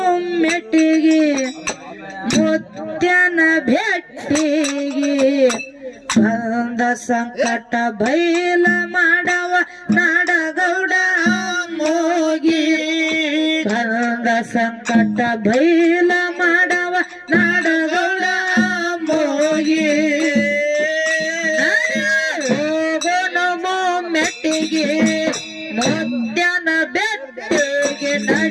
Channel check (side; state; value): both; identical; correlation 1.00